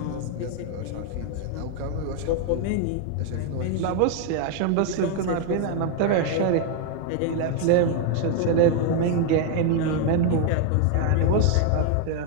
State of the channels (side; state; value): both; different; correlation 0.00